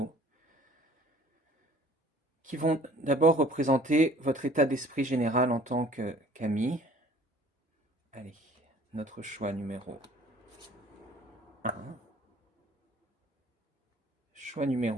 qui vont d'abord représenter votre état d'esprit général en tant qu'ami. Allez, notre choix numéro un, choix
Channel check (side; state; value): both; normal; correlation 0.52